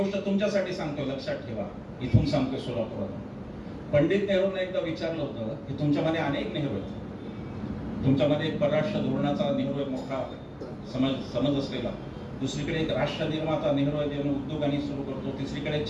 तुमच्यासाठी सांगतो, लक्षात ठेवा. इथून सांगतोय सोलापुरात. पंडित नेहरूंना एकदा विचारलं होतं की तुमच्यामध्ये अनेक नेहरू आहेत. तुमच्यामध्ये एक परराष्ट्र धोरणाचा नेहरू एक मोठा समज असलेला, दुसरीकडे एक राष्ट्र निर्माता नेहरू आहे, ज्याने उद्योगांनी सुरू करतो, तिसरीकडे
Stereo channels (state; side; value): identical; both; correlation 1.00